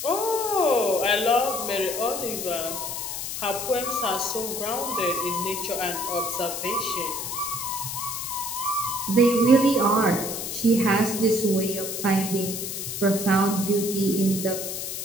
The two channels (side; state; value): left; noise; hiss, 5 dB below the sound